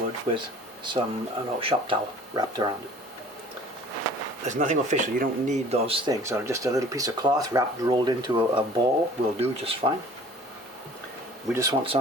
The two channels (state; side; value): normal; both; correlation 0.49